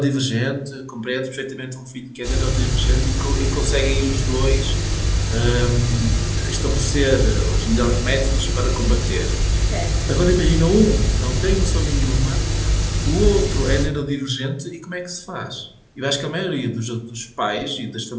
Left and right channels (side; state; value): both; identical; correlation 1.00